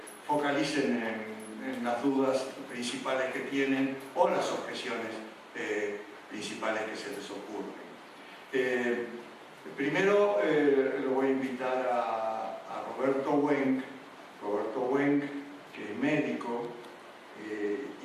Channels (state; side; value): identical; both; correlation 1.00